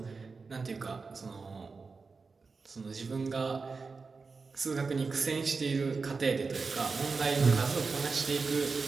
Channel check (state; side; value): quieter; left; 4.5 dB